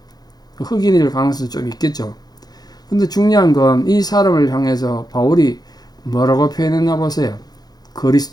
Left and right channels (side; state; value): right; late; 0.19 ms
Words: 흑인일 가능성이 좀 있겠죠. 근데 중요한 건 이 사람을 향해서 바울이 뭐라고 표현했나 보세요.